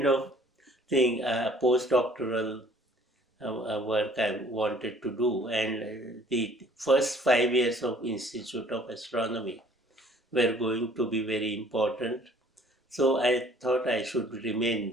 of thing, postdoctoral work I wanted to do, and the first 5 years of Institute of Astronomy were going to be very important. So I thought I should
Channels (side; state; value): both; normal; correlation 0.56